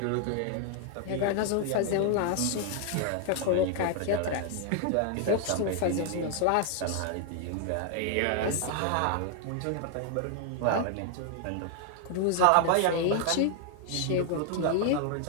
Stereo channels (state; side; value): different; both; correlation 0.00